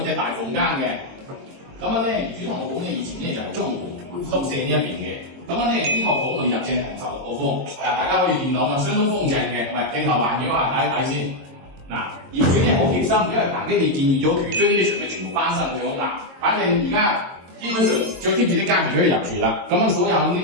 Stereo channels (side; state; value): left; late; 22 ms